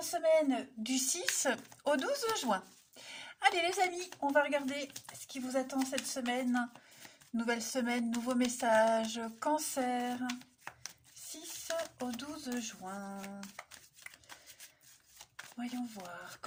semaine du 6 au 12 juin. Allez les amis, on va regarder ce qui vous attend cette semaine. Nouvelle semaine, nouveau message. Cancer, 6 au 12 juin. Voyons voir,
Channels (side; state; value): both; identical; correlation 1.00